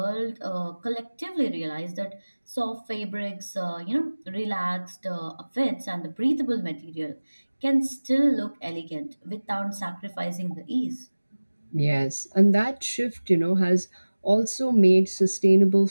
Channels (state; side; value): inverted; both; correlation -1.00